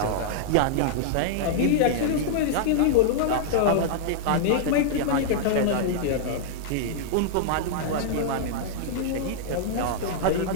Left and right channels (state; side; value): different; both; correlation -0.02